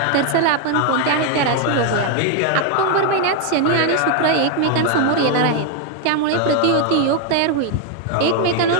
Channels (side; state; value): both; different; correlation 0.00